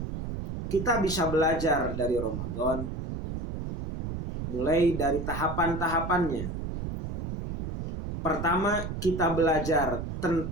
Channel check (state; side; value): noise; right; rumble, 6 dB below the sound